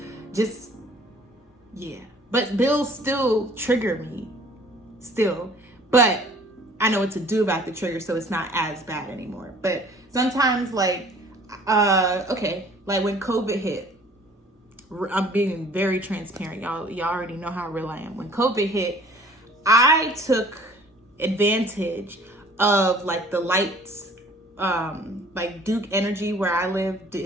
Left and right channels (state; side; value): normal; both; correlation 0.53